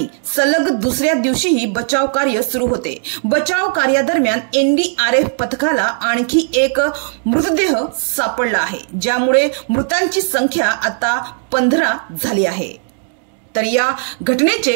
सलग दुसऱ्या दिवशीही बचाव कार्य सुरू होते। बचाव कार्यादरम्यान एनडीआरएफ पथकाला आणखी एक मृतदेह सापडला आहे, ज्यामुळे मृतांची संख्या आता 15 झाली आहे। तर या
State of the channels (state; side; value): silent; left; digital silence